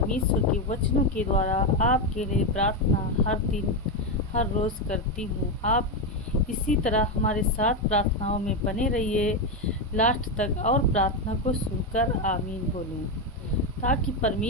के वचनों के द्वारा आपके लिए प्रार्थना हर दिन हर रोज़ करती हूँ। आप इसी तरह हमारे साथ प्रार्थनाओं में बने रहिए लास्ट तक और प्रार्थना को सुनकर आमीन बोलें, ताकि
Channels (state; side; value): normal; both; correlation 0.09